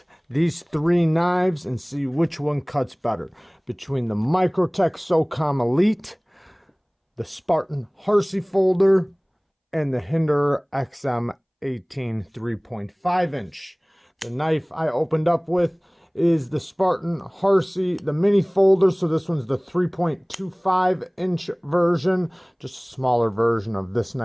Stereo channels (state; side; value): identical; both; correlation 1.00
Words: these three knives and see which one cuts better between the Microtech SOCOM Elite, the Spartan Harsey Folder, and the Hinderer XM-18 3.5 inch. The knife I opened up with is the Spartan Harsey, the mini folder. So this one's the 3.25 inch version, just a smaller version of this